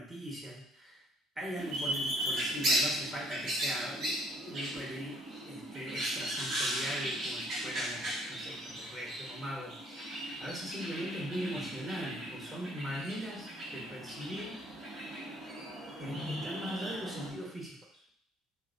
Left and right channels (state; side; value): normal; both; correlation 0.62